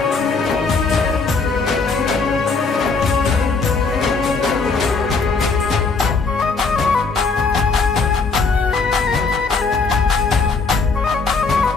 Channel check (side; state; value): right; quieter; 4.4 dB